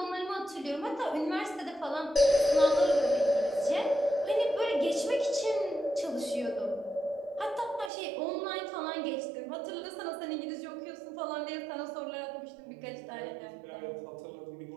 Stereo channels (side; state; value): left; drops out; at 7.9 s